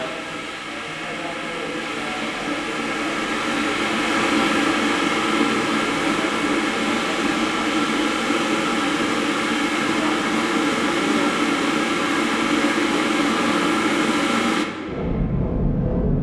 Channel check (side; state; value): both; identical; correlation 1.00